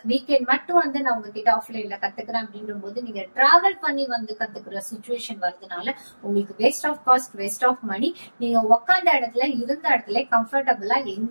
வீக்கெண்ட் மட்டும் நான் உங்ககிட்ட ஆஃப்லைன்ல கத்துக்கிறேன் அப்படின்ற போது நீங்க டிராவல் பண்ணி கத்துக்கிற சிச்சுவேஷன் வருதுனால உங்களுக்கு waste of cost waste of money. நீங்க உட்காந்த இடத்துல இருந்த இடத்துல கம்ஃபர்டபுளா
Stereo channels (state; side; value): inverted; both; correlation -1.00